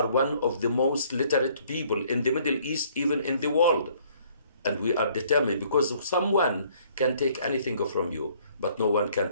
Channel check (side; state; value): both; inverted; correlation -0.61